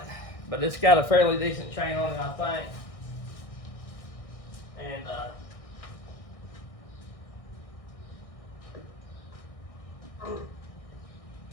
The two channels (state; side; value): late; right; 1.6 ms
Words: but it's got a fairly decent chain on it, I think. And